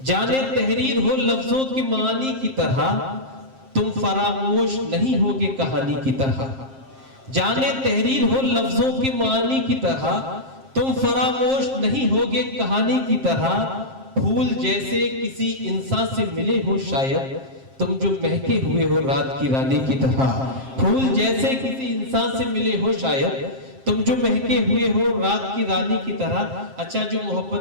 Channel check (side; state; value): left; late; 7.5 ms